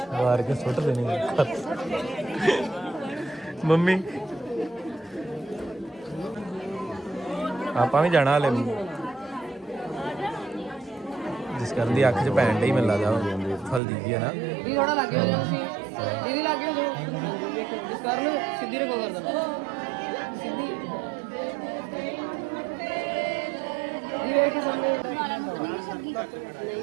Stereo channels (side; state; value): left; drops out; at 13.8 s